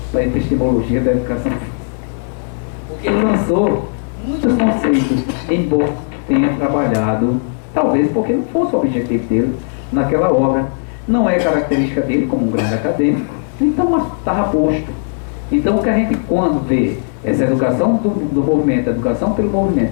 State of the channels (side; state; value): right; silent; digital silence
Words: para a epistemologia da educação física. Porque ele lançou muitos conceitos, embora tenha trabalhado, talvez porque não fosse o objetivo dele naquela obra. Não é característica dele como um grande acadêmico, então estava posto. Então o que a gente, quando vê essa educação do movimento, a educação pelo movimento,